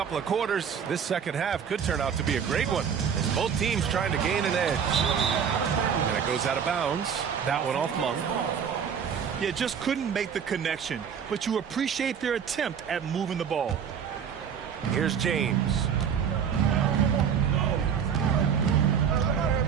of quarters, this second half could turn out to be a great one, as both teams trying to gain an edge. And it goes out of bounds. That one off Monk. Yeah, just couldn't make the connection, but you appreciate their attempt at moving the ball. Here's James.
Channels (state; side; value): quieter; left; 7.5 dB